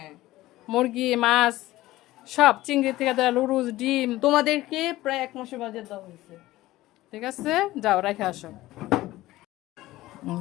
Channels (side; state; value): right; quieter; 16.9 dB